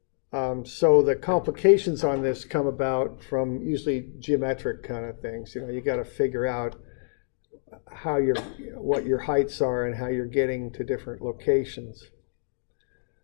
So the complications on this come about from usually geometric kind of things. You know, you got to figure out what your heights are and how you're getting to different locations.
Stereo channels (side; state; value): right; silent; digital silence